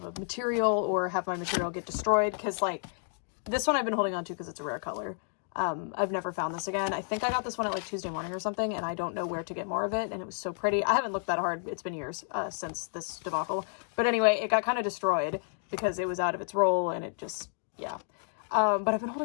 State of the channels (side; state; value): right; silent; 57 dB below the other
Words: a material or have my material get destroyed. Cause like this one I've been holding on to because it's a rare color. I've never found this again. I think I got this one at like Tuesday morning or something, and I don't know where to get more of it, and it was so pretty. I haven't looked that hard. It's been years since this debacle. But anyway, it got kind of destroyed because it was out of its roll, and it just, yeah. But I've been